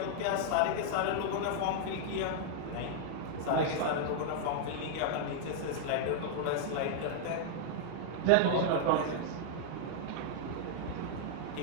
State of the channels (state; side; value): different; both; correlation -0.01